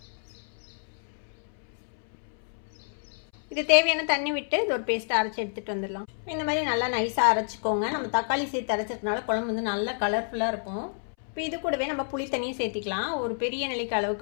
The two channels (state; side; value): silent; right; 59 dB below the other